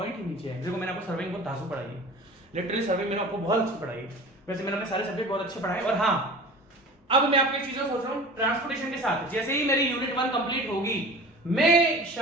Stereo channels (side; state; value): both; normal; correlation 0.39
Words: नीचे है। देखो मैंने आपको सर्वे में बहुत धांसू पढ़ाई है, लिटरली सर्वे मैंने आपको बहुत अच्छी पढ़ाई है, वैसे मैंने अपने सारे सब्जेक्ट बहुत अच्छे पढ़ाए। और हाँ, अब मैं आपको एक चीज सोच रहा हूं, ट्रांसपोर्टेशन के साथ जैसे ही मेरी यूनिट 1 कंप्लीट होगी, मैं